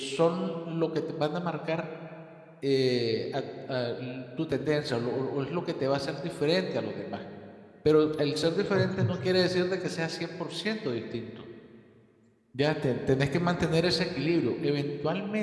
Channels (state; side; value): identical; both; correlation 1.00